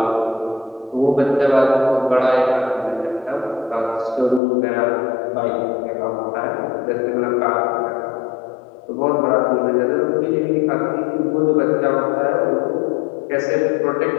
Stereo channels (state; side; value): drops out; right; at 4.4 s